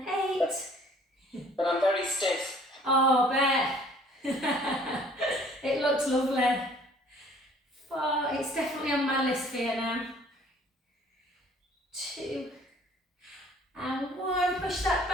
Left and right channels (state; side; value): normal; both; correlation 0.55